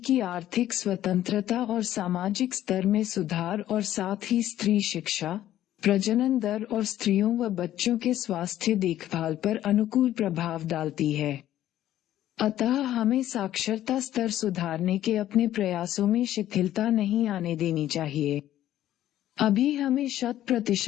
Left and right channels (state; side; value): quieter; right; 12.7 dB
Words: आर्थिक स्वतंत्रता और सामाजिक स्तर में सुधार और साथ ही स्त्री शिक्षा प्रजनन दर और स्त्रियों व बच्चों के स्वास्थ्य देखभाल पर अनुकूल प्रभाव डालती है। अतः हमें साक्षरता स्तर सुधारने के अपने प्रयासों में शिथिलता नहीं आने देनी चाहिए। अभी हमें